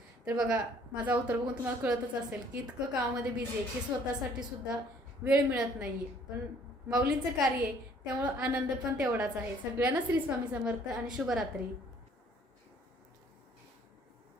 तर बघा माझा अवतार बघून तुम्हाला कळतच असेल की इतकं कामामध्ये बिझी आहे की स्वतःसाठी सुद्धा वेळ मिळत नाहीये. पण माऊलींचं कार्य आहे त्यामुळं आनंद पण तेवढाच आहे. सगळ्यांना श्री स्वामी समर्थ आणि शुभरात्री.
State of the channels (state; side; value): normal; both; correlation 0.59